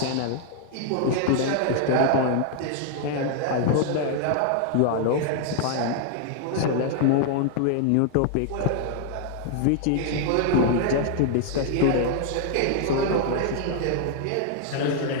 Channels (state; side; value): different; both; correlation 0.00